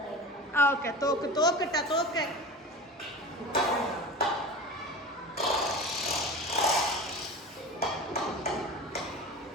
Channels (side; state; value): both; normal; correlation 0.33